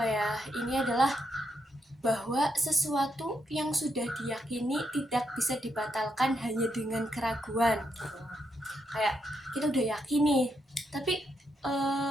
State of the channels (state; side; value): normal; both; correlation 0.80